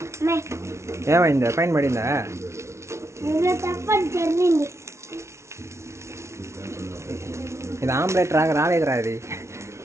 ఏమైందా? పైన పడిందా? తప్పని జరిగింది. ఇది ఆమ్లెట్ రాలేదురా. ఇది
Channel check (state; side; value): late; left; 0.13 ms